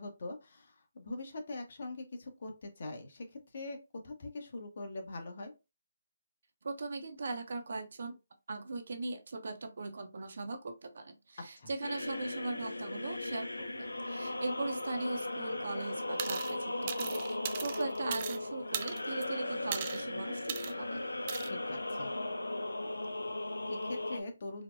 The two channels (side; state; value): both; inverted; correlation -0.89